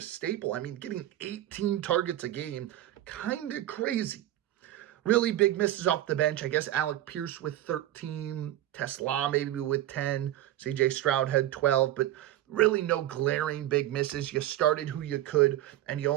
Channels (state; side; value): quieter; left; 13.8 dB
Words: I mean, getting 18 targets a game, kind of crazy. Really big misses off the bench. I guess Alec Pierce with 13. Tesla maybe with 10. CJ Stroud had 12. But really no glaring big misses. You started who you could, and you